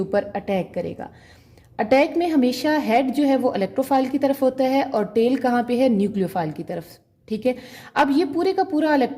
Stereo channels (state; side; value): identical; both; correlation 1.00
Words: अटैक करेगा। अटैक में हमेशा हेड जो है वो इलेक्ट्रोफाइल की तरफ होता है और टेल कहाँ पे है, न्यूक्लियोफाइल की तरफ, ठीक है। अब ये पूरे का पूरा